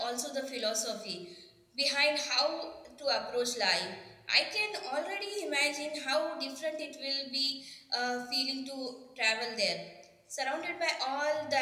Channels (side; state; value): both; identical; correlation 1.00